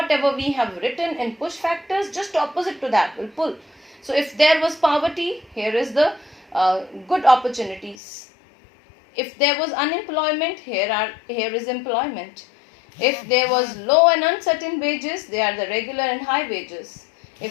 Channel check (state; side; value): drops out; right; at 8.0 s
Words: we have written in push factors, just opposite to that will pull. So if there was poverty, here is the good opportunities. If there was unemployment, here is employment. If there was low and uncertain wages, they are the regular and high wages.